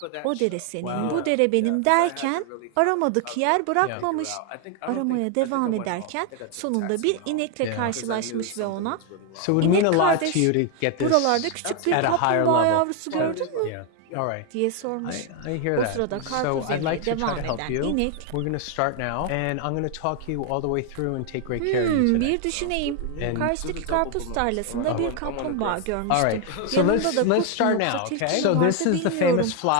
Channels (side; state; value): both; different; correlation 0.01